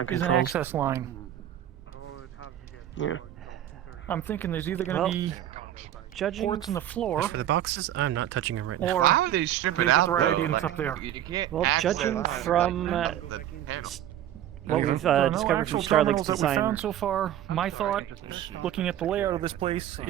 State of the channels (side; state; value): left; quieter; 11.7 dB